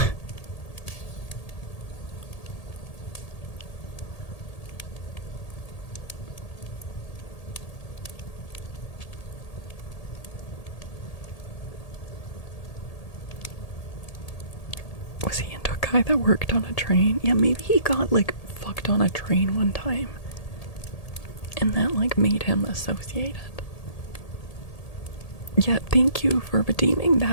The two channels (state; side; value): late; right; 1.8 ms